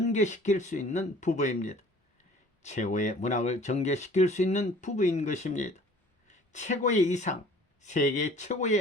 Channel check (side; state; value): both; normal; correlation 0.50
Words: 수 있는 부부입니다. 최고의 문학을 전개시킬 수 있는 부부인 것입니다. 최고의 이상, 세계